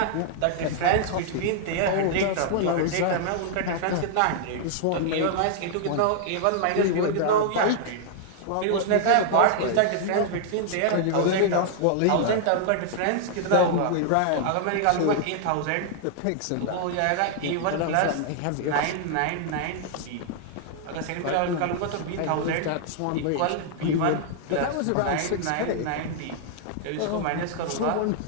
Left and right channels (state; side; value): different; both; correlation -0.01